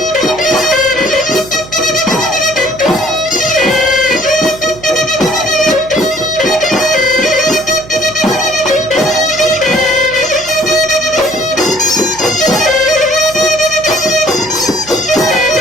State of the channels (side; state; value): right; noise; hum, 19 dB below the sound